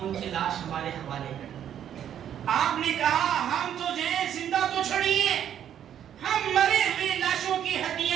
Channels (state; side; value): quieter; left; 9.8 dB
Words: ان کی لاش ہمارے حوالے کریں۔ آپ نے کہا ہم تو جو ہے زندہ تو چھڑیے، ہم مرے ہوئے لاشوں کی